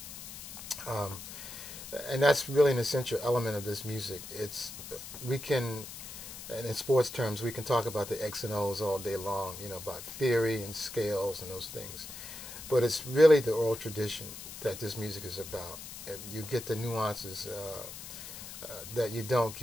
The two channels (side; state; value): left; noise; hiss, 11 dB below the sound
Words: um, and that's really an essential element of this music. We can, and in sports terms, we can talk about the X and O's all day long, about theory and scales and those things, but it's really the oral tradition that this music is about. And you get the nuances that you don't